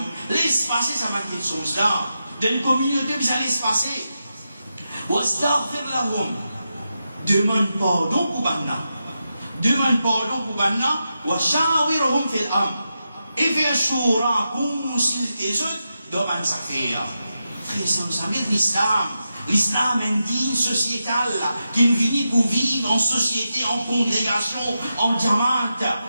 laisse passer ça va quelque chose là. Dans une communauté, vous allez laisse passer. Wastaghfir lahum, demande pardon pour Banna. Demande pardon pour Banna, wa shawirhum fil amr. Et faire choura, consulter les autres, demande ça faire. Frère, ça veut dire l'islam. L'islam est une digne sociétale qui est venue pour vivre en société, en congrégation, en diamante.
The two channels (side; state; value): both; inverted; correlation -0.88